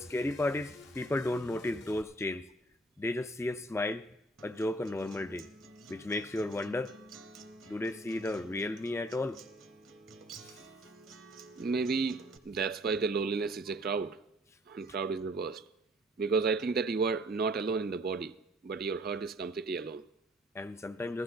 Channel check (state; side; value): normal; both; correlation 0.58